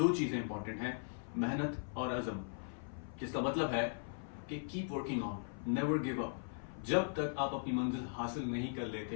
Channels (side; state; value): right; silent; 52 dB below the other